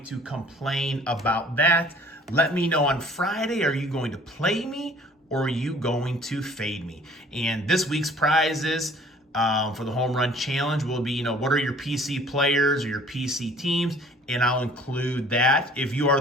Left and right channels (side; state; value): both; normal; correlation 0.53